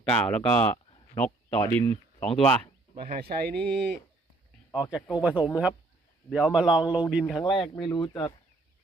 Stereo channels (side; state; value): left; quieter; 3.0 dB